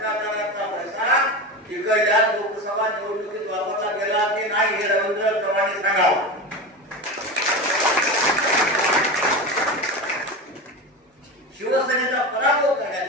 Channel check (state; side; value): normal; both; correlation 0.24